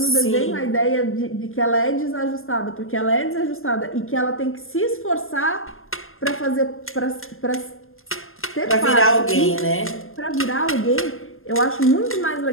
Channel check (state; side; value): late; right; 0.60 ms